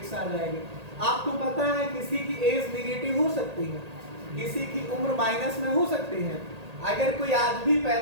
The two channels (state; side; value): late; left; 1.8 ms